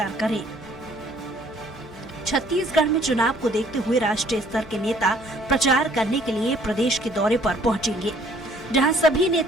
करें। छत्तीसगढ़ में चुनाव को देखते हुए राष्ट्रीय स्तर के नेता प्रचार करने के लिए प्रदेश के दौरे पर पहुंचेंगे, जहां सभी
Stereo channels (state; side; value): noise; left; hum, 21 dB below the sound